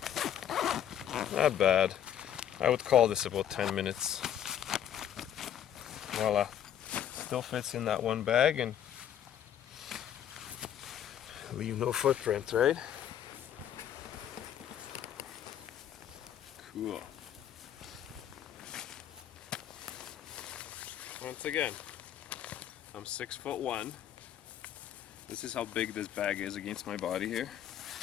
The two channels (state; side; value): quieter; right; 10.0 dB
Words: Not bad. I would call this about 10 minutes. Voila. Still fits in that one bag and leave no footprint, right? Cool. Once again, I'm 6'1". This is how big this bag is against my body here.